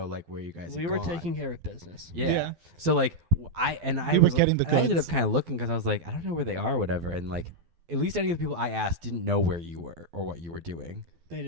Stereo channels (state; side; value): late; left; 12 ms